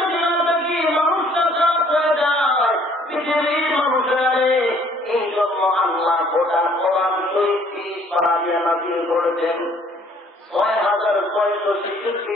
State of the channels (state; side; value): normal; both; correlation 0.59